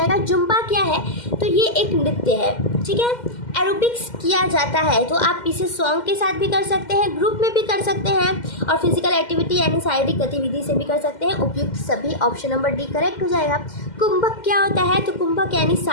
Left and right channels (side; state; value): right; late; 2.1 ms